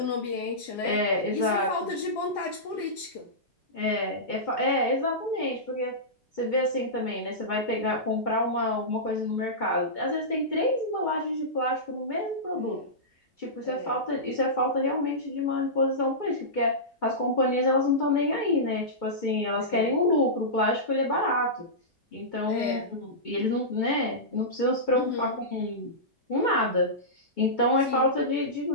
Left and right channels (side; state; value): both; normal; correlation -0.16